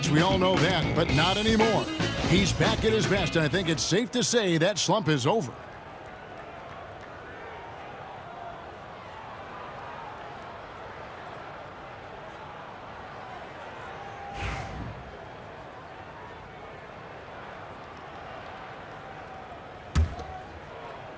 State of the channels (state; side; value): identical; both; correlation 1.00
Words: We all know that, but not anymore. He's back at his best, and I think it's safe to say that slump is over.